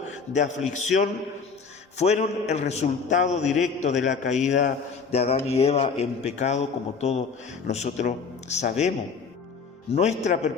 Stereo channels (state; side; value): quieter; right; 5.3 dB